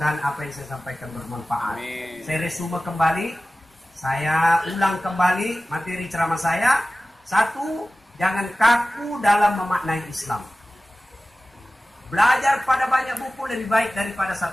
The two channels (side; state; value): both; normal; correlation 0.96